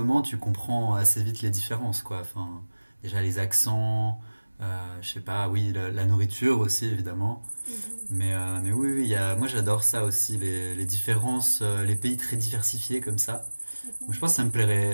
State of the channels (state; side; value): inverted; both; correlation -1.00